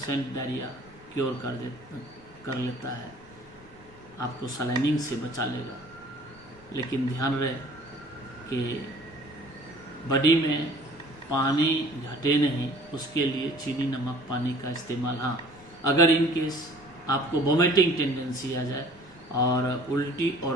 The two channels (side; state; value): both; normal; correlation 0.51